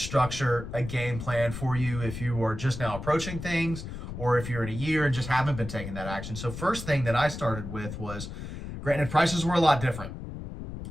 a game plan for you if you are just now approaching things or if you're in a year and just haven't been taking that action. So first thing that I started with was, granted, prices were a lot different.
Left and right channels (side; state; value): left; noise; rumble, 9 dB below the sound